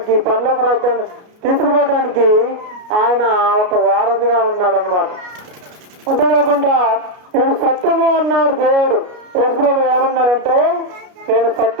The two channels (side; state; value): left; late; 33 ms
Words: పరలోక రాజ్యాన్ని తీసుకుపోవడానికి ఆయన ఒక వారధిగా ఉన్నాడు అన్నమాట. అంతేకాకుండా నేను సత్యము అన్నాడు దేవుడు. యేసుప్రభు ఏమన్నాడంటే నేను